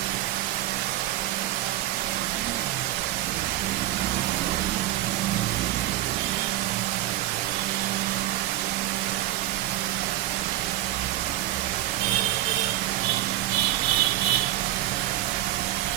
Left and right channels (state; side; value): quieter; left; 14.5 dB